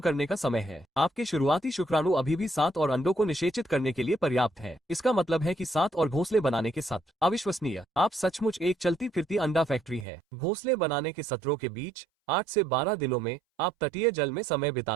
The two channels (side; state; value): left; drops out; at 10.1 s